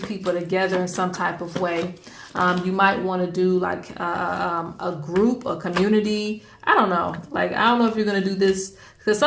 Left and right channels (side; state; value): both; identical; correlation 1.00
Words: together in some type of way. You might want to do like a group, a community. I don't know. Like, I don't know if you're going to do this, because